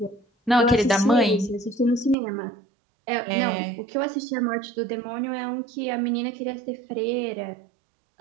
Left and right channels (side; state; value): left; drops out; at 2.1 s